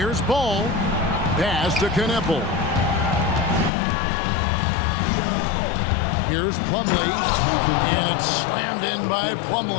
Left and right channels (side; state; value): right; drops out; at 3.7 s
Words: Ball. Pass to Kneppel. Here's Plumlee. And it's slammed in by